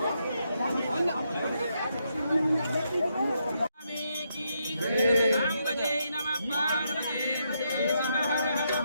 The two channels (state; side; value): inverted; both; correlation -0.80